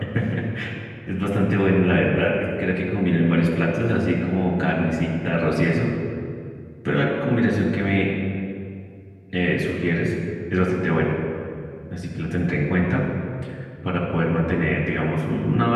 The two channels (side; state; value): both; identical; correlation 1.00